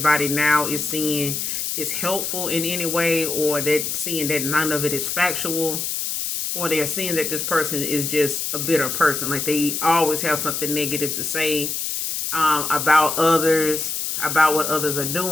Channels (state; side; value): noise; left; hiss, 2 dB below the sound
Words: now is seeing is helpful in any way, or they're seeing that none of it is factual, or they're seeing that this person is just a bitter person. Like they always have something negative to say about others, about what others are